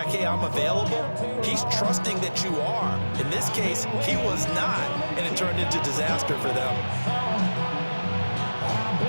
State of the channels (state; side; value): inverted; both; correlation -1.00